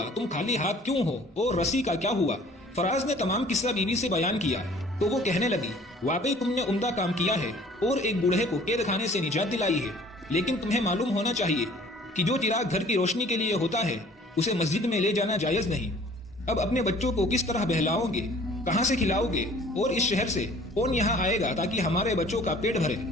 تم خالی ہاتھ کیوں ہو اور رسی کا کیا ہوا؟ فراز نے تمام قصہ بیوی سے بیان کیا تو وہ کہنے لگی، واقعی تم نے عمدہ کام کیا ہے اور ایک بوڑھے کو قید خانے سے نجات دلائی ہے، لیکن تمہیں معلوم ہونا چاہیے کہ جو چراغ گھر کی روشنی کے لیے ہوتا ہے اسے مسجد میں لے جانا جائز نہیں۔ اب اپنے بچوں کو کس طرح بہلاؤ گے، کہاں سے کھلاؤ گے، اور اس شہر سے کون یہاں آئے گا تاکہ ہمارے بچوں کا پیٹ بھرے؟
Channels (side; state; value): both; normal; correlation 0.52